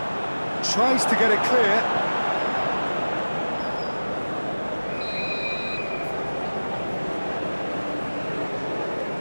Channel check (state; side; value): inverted; both; correlation -1.00